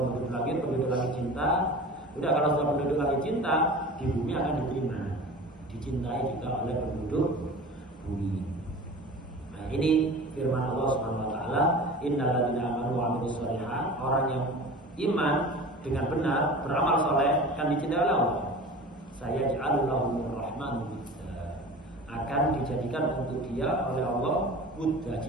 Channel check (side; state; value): both; normal; correlation 0.37